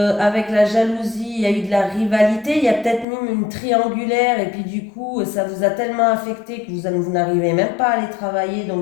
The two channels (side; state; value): right; drops out; at 3.1 s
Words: la jalousie, il y a eu de la rivalité, il y a peut-être même une triangulaire, et puis du coup, ça vous a tellement affecté que vous n'arrivez même pas à aller travailler,